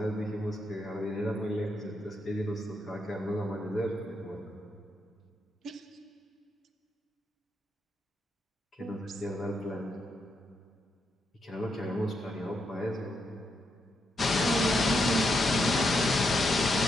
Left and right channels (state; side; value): normal; both; correlation 0.81